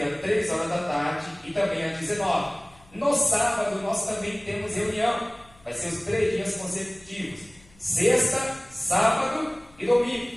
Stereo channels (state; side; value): noise; left; hum, 27 dB below the sound